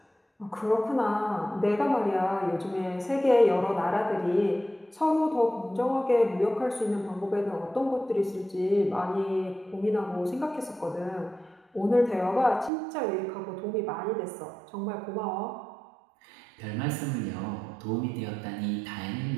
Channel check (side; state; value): left; drops out; at 12.7 s